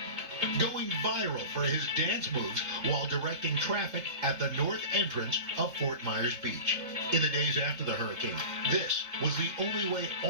going viral for his dance moves while directing traffic at the north entrance of Fort Myers Beach. In the days after the hurricane, this was the only way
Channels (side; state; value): left; late; 3.7 ms